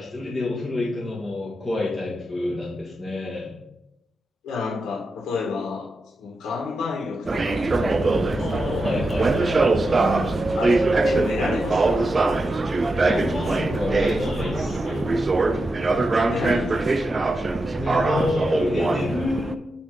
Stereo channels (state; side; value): normal; both; correlation 0.88